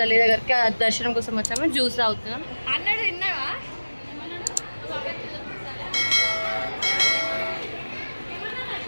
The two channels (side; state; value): both; inverted; correlation -1.00